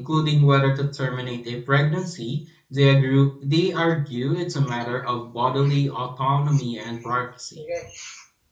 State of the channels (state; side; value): identical; both; correlation 1.00